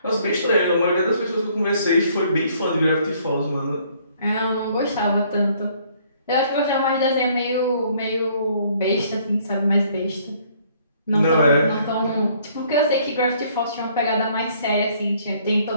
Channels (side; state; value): both; inverted; correlation -0.62